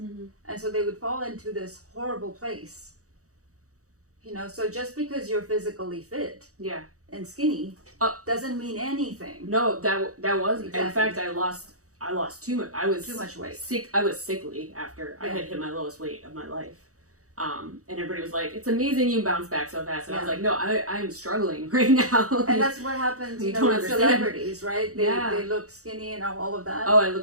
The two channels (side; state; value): left; late; 0.65 ms